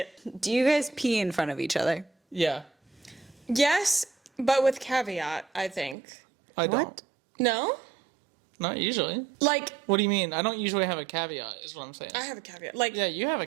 Do you guys pee in front of each other? Yeah. Yes, but with caveat, I think. I don't. What? No? Not usually. Like, What do you mean? I don't usually have a caveat, is what I'm saying. I have a caveat. Like, Yeah, you have a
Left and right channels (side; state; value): left; drops out; at 6.0 s